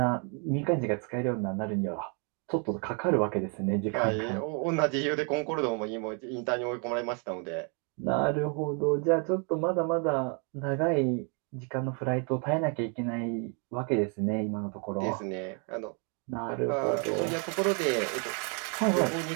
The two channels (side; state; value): left; quieter; 37.9 dB